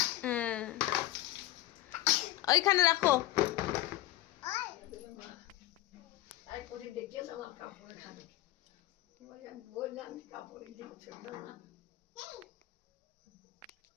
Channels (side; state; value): right; quieter; 16.1 dB